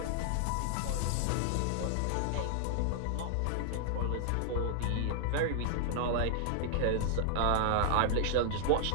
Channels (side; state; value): both; different; correlation -0.01